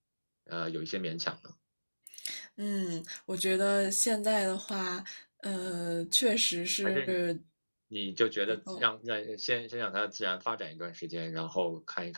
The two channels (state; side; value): inverted; both; correlation -1.00